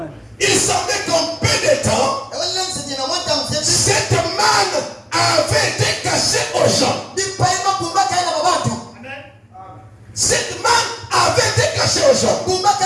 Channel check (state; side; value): identical; both; correlation 1.00